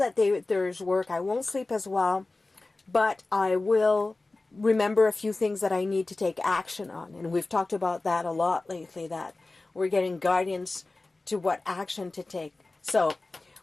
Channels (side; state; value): right; quieter; 3.2 dB